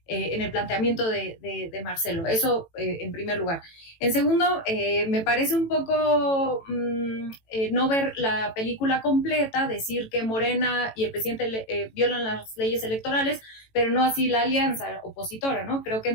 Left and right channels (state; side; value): late; right; 18 ms